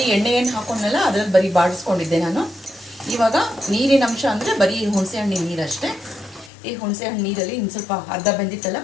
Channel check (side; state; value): right; drops out; at 6.5 s